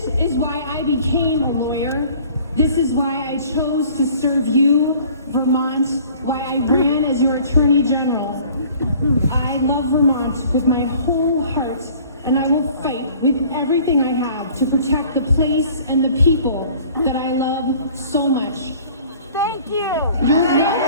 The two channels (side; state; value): both; inverted; correlation -0.51